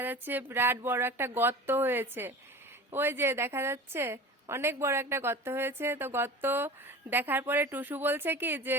যাচ্ছে বিরাট বড় একটা গর্ত হয়েছে। ওই যে দেখা যাচ্ছে অনেক বড় একটা গর্ত হয়েছে। তো গর্ত দেখার পরে টুসু বলছে কি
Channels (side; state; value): both; normal; correlation 0.36